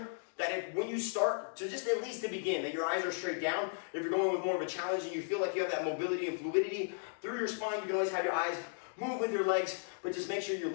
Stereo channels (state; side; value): silent; right; digital silence